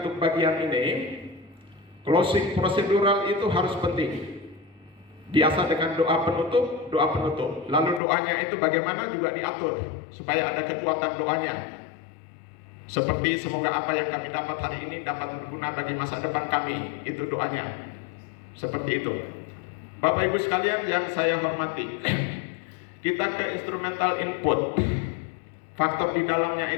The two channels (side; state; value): right; drops out; at 8.0 s